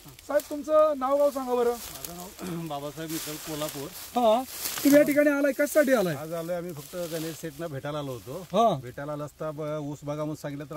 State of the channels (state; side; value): identical; both; correlation 1.00